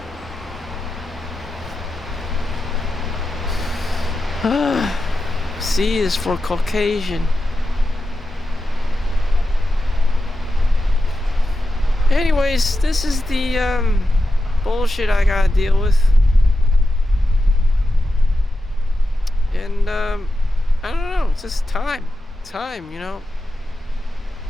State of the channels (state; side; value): normal; both; correlation 0.90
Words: C is for Caucasian. Anyways, this is the bullshit I gotta deal with. And I don't know, it's just time, time